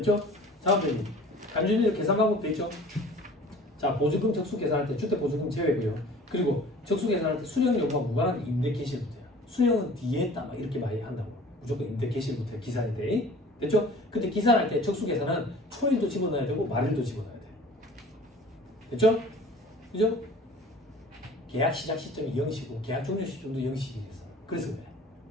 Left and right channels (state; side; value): normal; both; correlation 0.46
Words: 다음 페이지. 간주인들 계산 방법 됐죠? 자, 보증금 적수 계산할 때 주택 보증금 제외고요. 그리고 적수 계산할 때 수령 여부와 무관한 임대 개시일부터요. 수령은 뒤에 했다 막 이렇게 많이 한다고. 무조건 임대 개시일부터 기산인데. 됐죠? 근데 기산할 때 적수 계산은 초일도 집어넣어야 되고 말일도 집어넣어야 돼요. 됐죠? 그죠? 계약 시작 시점이 0시고 계약 종료 시점도 0시겠어. 그래서 그래.